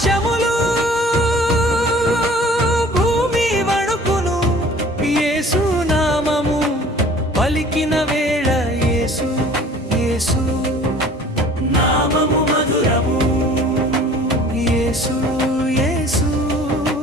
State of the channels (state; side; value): normal; both; correlation 0.49